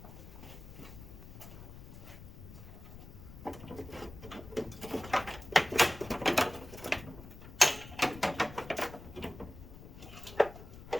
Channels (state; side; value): noise; left; rumble, 15 dB below the sound